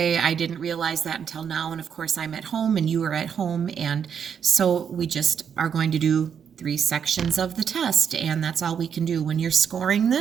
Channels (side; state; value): left; quieter; 7.6 dB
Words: I didn't realize that until now. And of course, I'm at home and you are at home. And so we just are going to do 3 sections of the test. And that's all we can do. When you're scoring